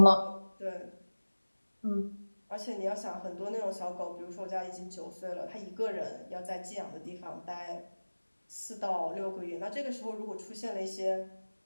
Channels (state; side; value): inverted; both; correlation -1.00